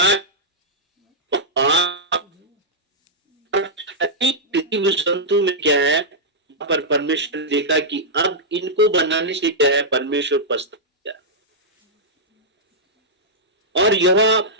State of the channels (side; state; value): both; normal; correlation -0.09